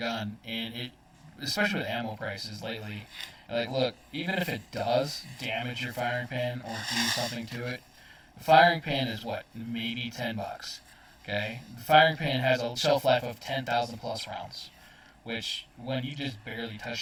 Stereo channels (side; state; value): both; identical; correlation 1.00